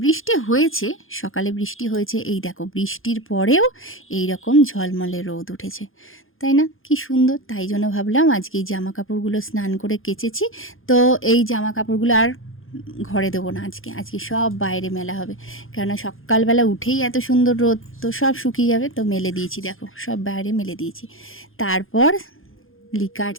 বৃষ্টি হয়েছে, সকালে বৃষ্টি হয়েছে, এই দেখো বৃষ্টির পরেও এই রকম ঝলমলে রোদ উঠেছে, তাই না? কি সুন্দর। তাই জন্য ভাবলাম আজকে এই জামা কাপড়গুলো স্নান করে কেচেছি, তো এই জামা কাপড়গুলো আর ঘরে দেবো না, আজকে আজকে সব বাইরে মেলা হবে। কেননা সকালবেলা উঠেই এত সুন্দর রোদ, তো সব শুকিয়ে যাবে। তো মেলে দিয়েছি, দেখো সব বাইরে মেলে দিয়েছি। তারপর লিকার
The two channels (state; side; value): late; right; 0.60 ms